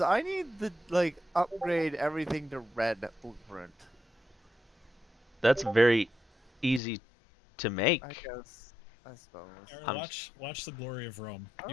I need to like upgrade everything to red blueprint. That's very easy to make. I guess. I suppose. Aaron, watch The Glory of Rome.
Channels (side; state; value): right; drops out; at 6.8 s